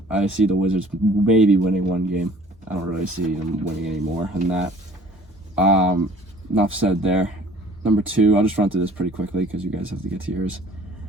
I see the Wizards maybe winning one game. I don't really see them winning any more than that. Enough said there. Number 2, I'll just run through this pretty quickly because you guys have to get to yours.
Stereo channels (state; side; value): normal; both; correlation 0.51